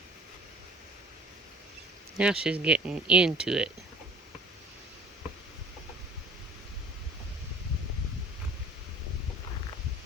Now she's getting into it.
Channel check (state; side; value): normal; both; correlation 0.48